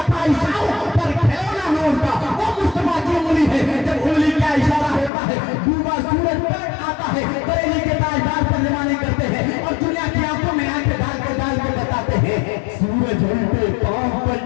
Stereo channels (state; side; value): drops out; right; at 5.1 s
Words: था इशारों पर खिलौना नूर का, वो मुस्तफा की उंगली है। जब उंगली का इशारा होता है, डूबा सूरज पलट आता है, बरेली के ताजदार तर्जुमानी करते हैं और दुनिया की आंखों में आंखें डाल के बताते हैं, सूरज उल्टे पांव पर